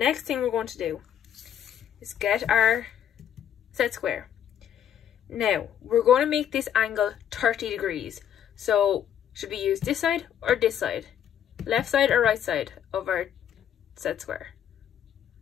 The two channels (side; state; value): right; quieter; 9.6 dB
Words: thing we're going to do is get our set square. Now, we're going to make this angle 30 degrees. So, should we use this side or this side? Left side or right side of our set square?